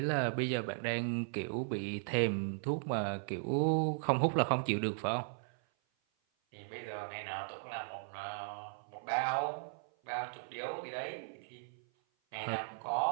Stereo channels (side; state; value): left; silent; 53 dB below the other